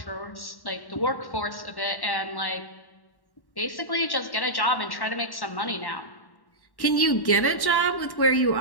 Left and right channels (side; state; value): right; late; 1.1 ms